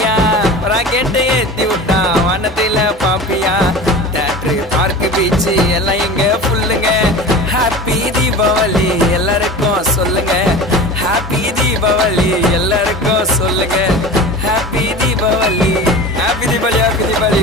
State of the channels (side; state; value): both; normal; correlation 0.34